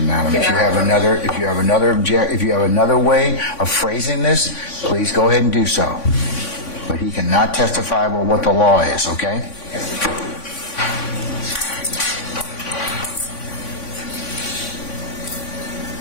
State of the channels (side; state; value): right; late; 3.5 ms